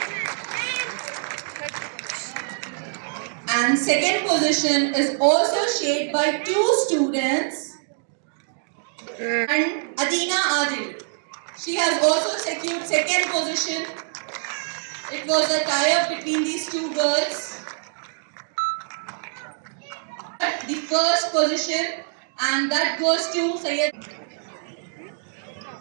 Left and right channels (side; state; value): left; silent; digital silence